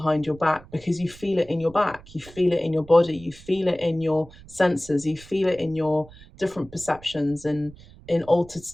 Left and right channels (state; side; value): noise; right; rumble, 21 dB below the sound